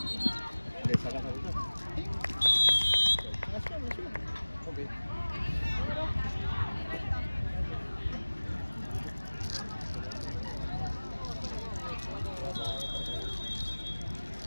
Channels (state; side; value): inverted; both; correlation -1.00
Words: ¿Le sacas la ruta? Ok.